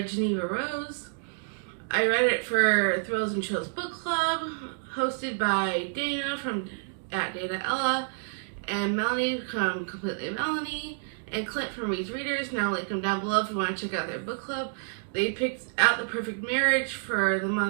Jeneva Rose. I read it for Thrills and Chills Book Club, hosted by Dana from Dana Ella, and Melanie from Completely Melanie, and Clint from Reed's Readers. Now I'll link them down below if you want to check out their book club. They picked out The Perfect Marriage for the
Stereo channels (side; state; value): left; silent; digital silence